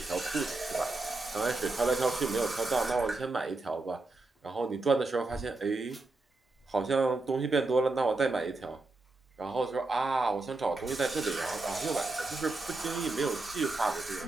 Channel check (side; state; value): left; quieter; 3.2 dB